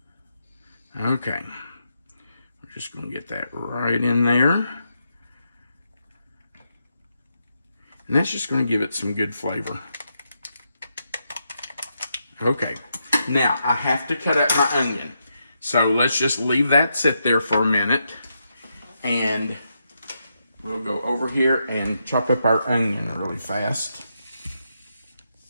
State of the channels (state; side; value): inverted; both; correlation -0.82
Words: Okay. We're just going to get that right in there. And that's just going to give it some good flavor. Okay. Now, I have to cut up my onion. So let's just leave that sit there for a minute. And we'll go over here and chop up our onion really fast.